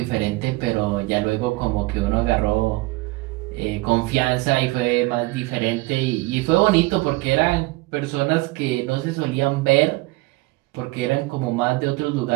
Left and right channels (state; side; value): quieter; left; 22.4 dB